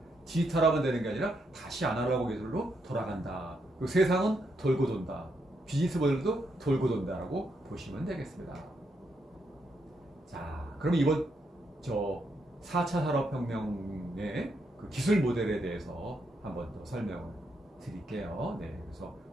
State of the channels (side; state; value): both; normal; correlation 0.79